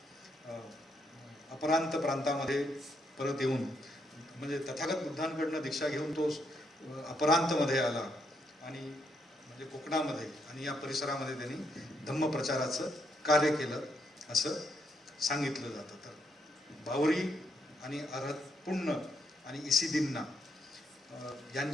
अपरांत प्रांतामध्ये परत येऊन म्हणजे तथागत बुद्धांकडनं दीक्षा घेऊन तो अपरांतमध्ये आला आणि म्हणजे कोकणामध्ये आणि या परिसरामध्ये त्यांनी धम्मप्रचाराचं कार्य केलं असं सांगितलं जातं. तर बावरी आणि अरहत पुण्य आणि इसिदिन्ना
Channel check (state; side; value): normal; both; correlation 0.76